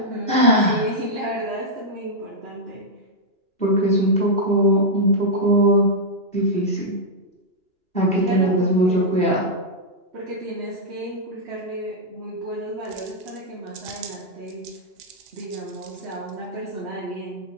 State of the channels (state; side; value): late; left; 2.9 ms